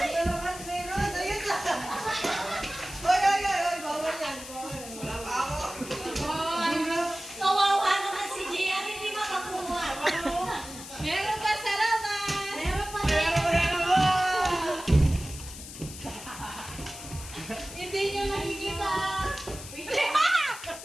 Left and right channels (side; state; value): left; noise; hiss, 13 dB below the sound